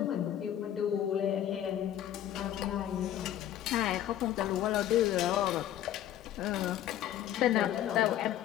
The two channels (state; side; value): quieter; right; 11.7 dB